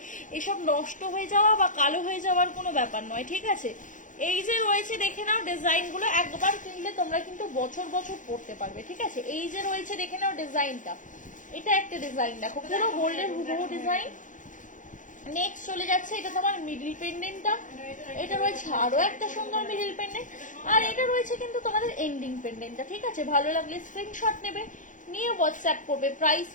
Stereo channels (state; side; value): late; right; 0.37 ms